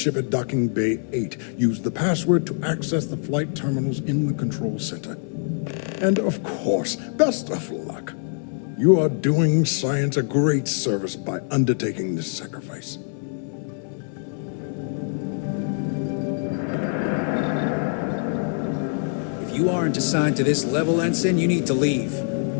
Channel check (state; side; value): silent; right; 55 dB below the other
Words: at Docking Bay 8. Use the password to access the flight terminals in the control center. And of course, best of luck. You are doing science a great service by undertaking this sacrifice. If you aren't assigned to this level, Ensign, you need to leave.